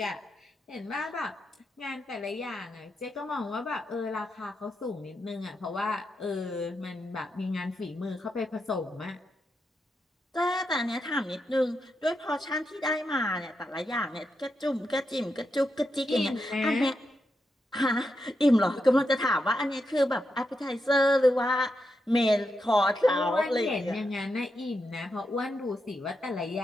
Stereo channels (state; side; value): normal; both; correlation 0.85